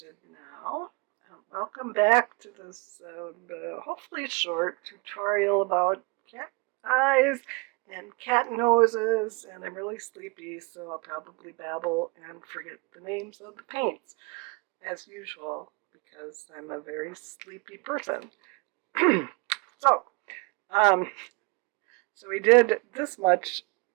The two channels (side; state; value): left; quieter; 29.8 dB